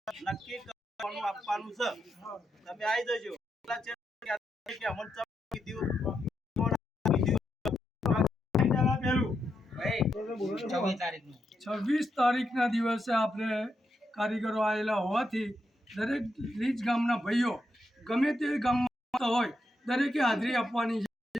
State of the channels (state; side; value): normal; both; correlation 0.83